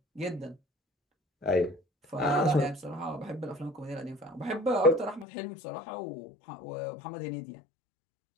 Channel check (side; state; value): right; drops out; at 5.2 s